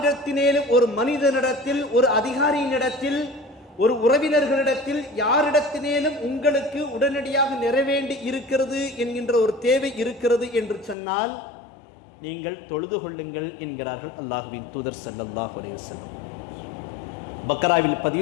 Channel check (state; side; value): drops out; right; at 11.0 s